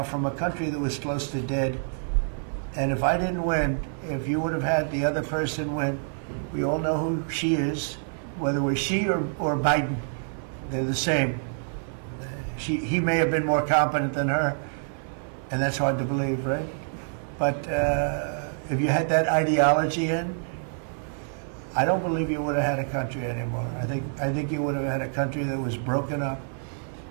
from a country that was close to dead. And if I didn't win, if you would have had the other person win, we all know who she is, whether it was she or Biden. They're the same. He may have been more competent than her, and that's hard to believe, right? But if you had that ideology in, I don't believe you would have had a country anymore. I think you would have had a country that was broken up.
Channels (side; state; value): left; silent; 57 dB below the other